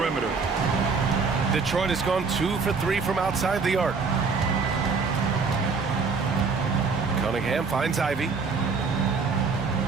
Detroit has gone 2 for 3 from outside the arc. Cunningham finds Ivy.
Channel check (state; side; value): quieter; left; 4.9 dB